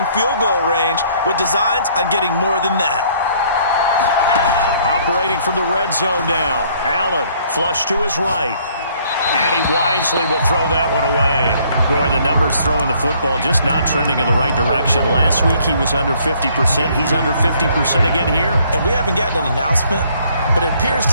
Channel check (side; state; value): both; inverted; correlation -0.62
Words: field goal range with designs on getting more than that. Operating from the red zone now. Allen flush to his right. And he wisely will throw that one away. Boy, the numbers throwing the football just not trending in the right direction. Last week he was under 50%. He's under 50% again here. And we haven't gotten an announcement, but it appears